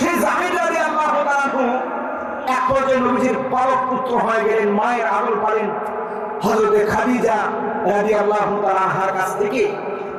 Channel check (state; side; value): identical; both; correlation 1.00